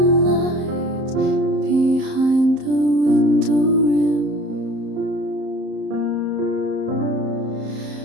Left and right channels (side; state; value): left; late; 31 ms